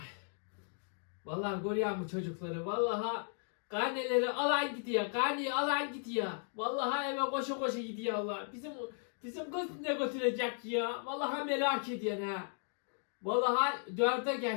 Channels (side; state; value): right; silent; 54 dB below the other